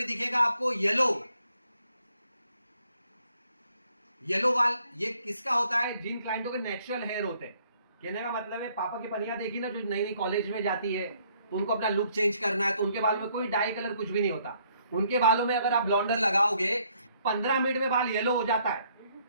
दिखेगा आपको येलो बाल। ये किसका होता है? जिन क्लाइंटों के नेचुरल हेयर होते हैं। कहने का मतलब है पापा की पनिया देखी ना, जो नई नई कॉलेज में जाती है तो उनको अपना लुक चेंज करना है, तो उनके बाल में कोई डाई कलर कुछ भी नहीं होता। उनके बालों में अगर आप ब्लॉन्डर लगाओगे 15 मिनट में बाल येलो हो जाता है,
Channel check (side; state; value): both; inverted; correlation -0.67